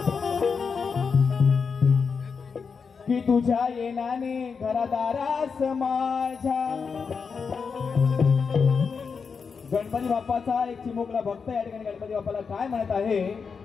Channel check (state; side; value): quieter; right; 5.6 dB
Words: की तुझ्या येण्याने घरादारास माझ्या गणपती बाप्पाचा एक चिमुकला भक्त या ठिकाणी गणपती बाप्पाला काय म्हणत आहे